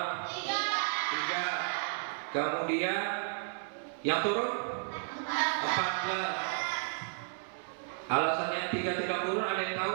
3. Kemudian yang turun 14. Alasan yang 3 tidak turun ada yang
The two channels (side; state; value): left; silent; 56 dB below the other